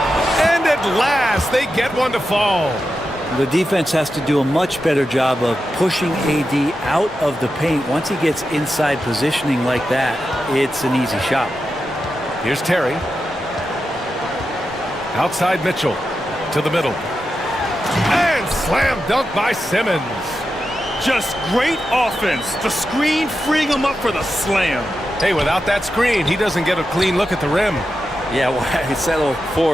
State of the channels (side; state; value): both; normal; correlation 0.89